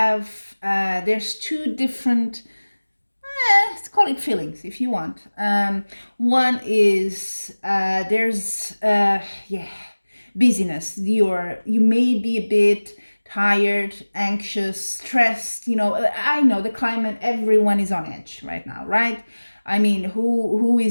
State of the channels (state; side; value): inverted; both; correlation -1.00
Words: there's two different, let's call it feelings if you want. One is busyness. You may be a bit tired, anxious, stressed. I know the climate, everyone is on edge right now, right? I mean, who